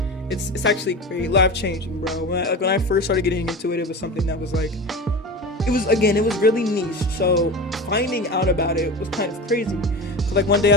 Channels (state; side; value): normal; both; correlation 0.29